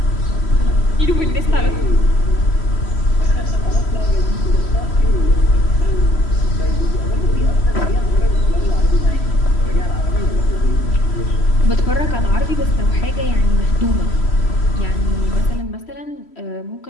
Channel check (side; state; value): right; late; 3.1 ms